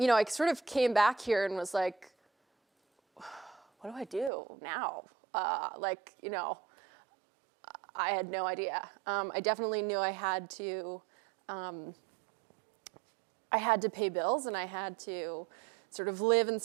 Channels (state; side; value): drops out; left; at 4.3 s